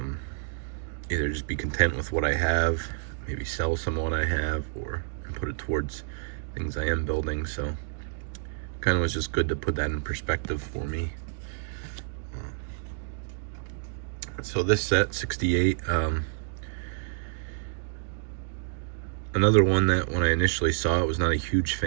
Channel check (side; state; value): left; silent; digital silence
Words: either just be content with what I have, maybe sell some of what I have, and put it towards things I am building. So kind of was just good to put that in perspective for me. So this set, 68, another one that when I initially saw it was not a huge